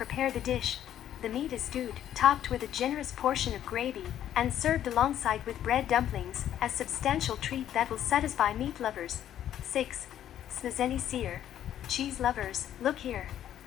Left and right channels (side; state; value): right; quieter; 11.0 dB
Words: the dish. The meat is stewed, topped with a generous portion of gravy, and served alongside with bread dumplings, a substantial treat that will satisfy meat lovers. 6. Smazeny syr. Cheese lovers, look here.